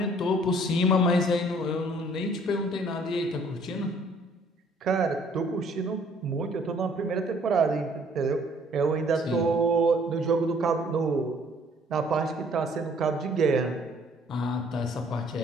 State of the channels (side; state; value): both; normal; correlation 0.59